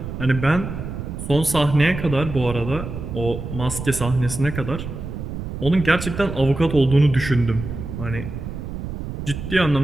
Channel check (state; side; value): noise; right; rumble, 7 dB below the sound